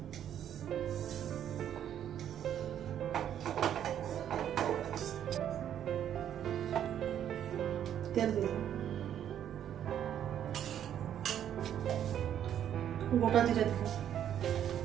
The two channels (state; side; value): quieter; left; 10.1 dB